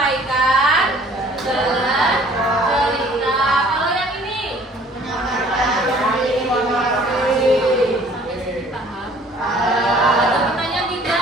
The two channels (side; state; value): both; normal; correlation 0.54